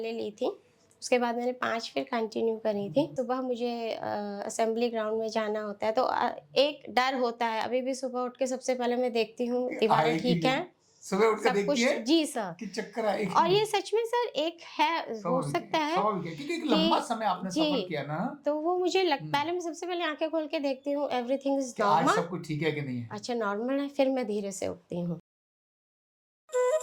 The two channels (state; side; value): identical; both; correlation 1.00